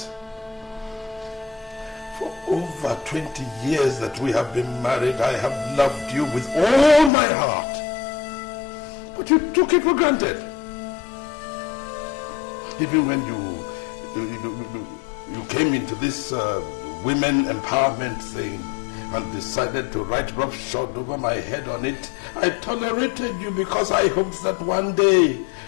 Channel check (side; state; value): right; drops out; at 7.1 s